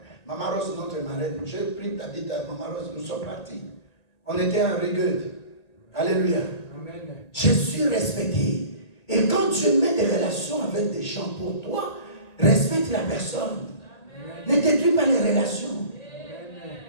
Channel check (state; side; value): late; right; 1.8 ms